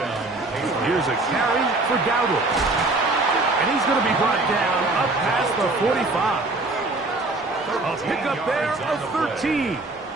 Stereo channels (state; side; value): quieter; left; 3.1 dB